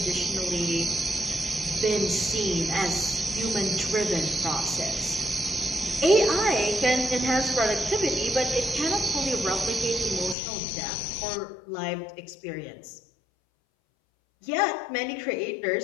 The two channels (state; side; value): drops out; right; at 10.4 s